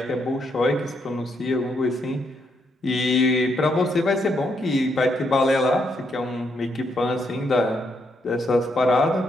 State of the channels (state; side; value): normal; both; correlation 0.77